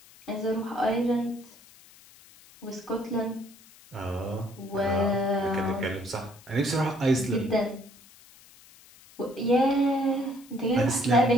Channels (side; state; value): left; noise; hiss, 24 dB below the sound